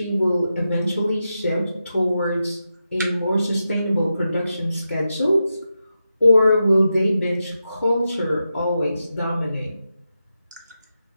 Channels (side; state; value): both; inverted; correlation -0.89